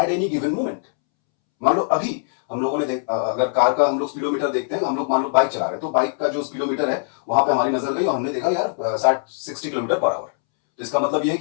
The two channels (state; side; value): silent; right; 65 dB below the other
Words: any given moment. मान लो अभी हम लोगों ने अगर कार का हम लोग स्पीडोमीटर देखते हैं, हम लोग मान लो बाइक चला रहे हैं, तो बाइक का जो स्पीडोमीटर है वहां पे हमारी नजर गई और हमने देखा यार 60 किलोमीटर पर आवर। तो इसका मतलब यह है